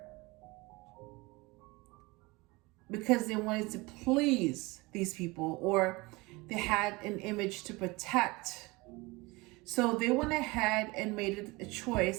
because they wanted to please these people, or they had an image to protect. So they went ahead and made a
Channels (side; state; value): left; quieter; 23.7 dB